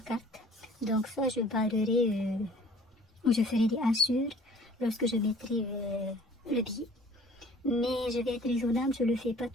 carte. Donc soit je barrerai ou je ferai des hachures lorsque je mettrai le billet. Mais je vais être raisonnable, je ne le fais pas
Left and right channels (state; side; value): normal; both; correlation 0.52